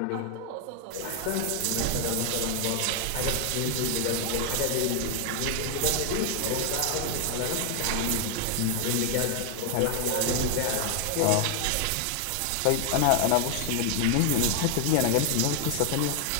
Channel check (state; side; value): different; both; correlation 0.00